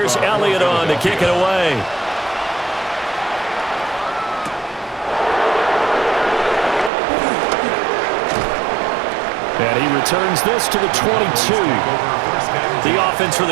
Elliott on to kick it away. And he returns this to the 22. The offense for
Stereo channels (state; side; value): drops out; left; at 6.9 s